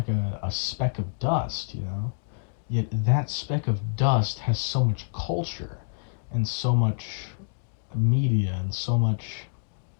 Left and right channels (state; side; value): silent; right; digital silence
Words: speck of dust. Yet that speck of dust has so much culture and so much media and so much